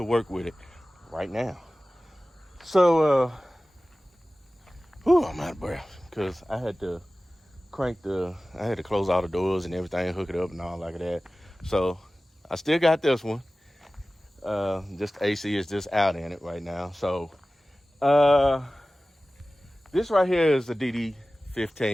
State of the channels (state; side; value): normal; both; correlation 0.97